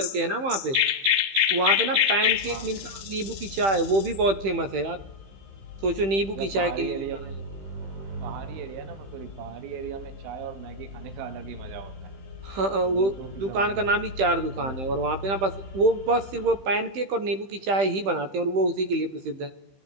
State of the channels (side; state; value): left; late; 15 ms